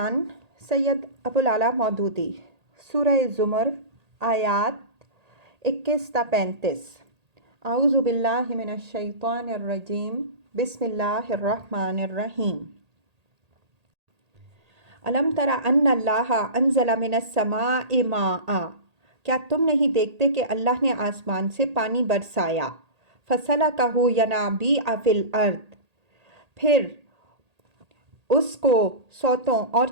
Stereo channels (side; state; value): left; late; 1.8 ms